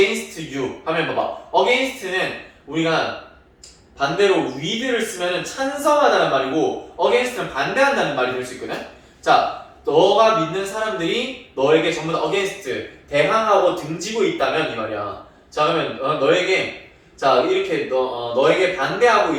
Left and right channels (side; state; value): both; identical; correlation 1.00